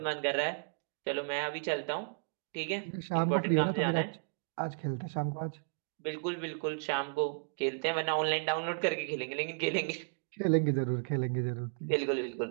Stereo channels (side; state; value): left; silent; digital silence